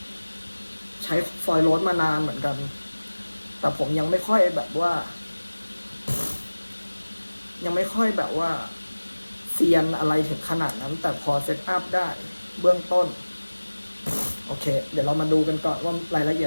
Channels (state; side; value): inverted; both; correlation -1.00